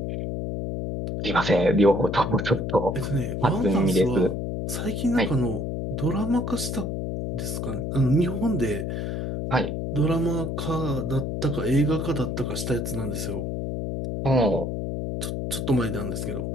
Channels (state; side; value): noise; left; hum, 3 dB below the sound